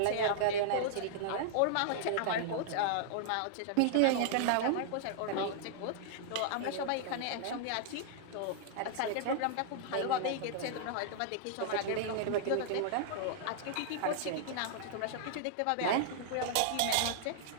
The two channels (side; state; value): both; different; correlation -0.01